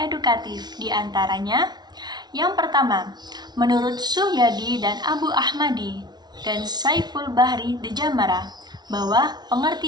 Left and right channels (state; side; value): late; left; 0.20 ms